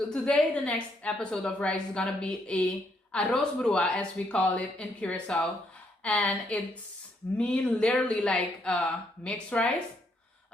today, the next episode of rice is gonna be a Aros Brua, as we call it in Curacao, and it's literally like mixed rice.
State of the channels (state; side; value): normal; both; correlation 0.73